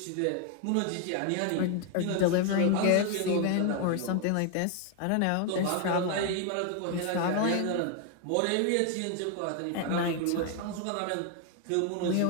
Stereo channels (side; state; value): both; different; correlation 0.01